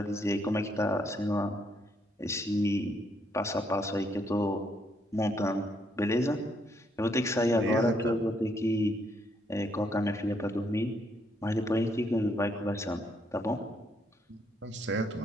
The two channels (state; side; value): normal; both; correlation 0.73